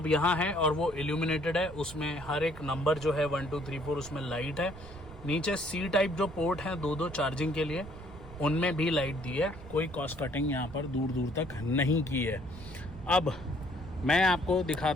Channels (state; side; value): noise; right; rumble, 15 dB below the sound